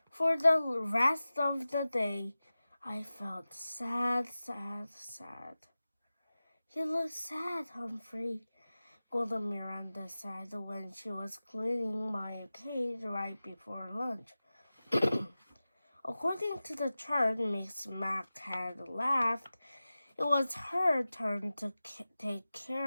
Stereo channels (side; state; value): both; inverted; correlation -0.96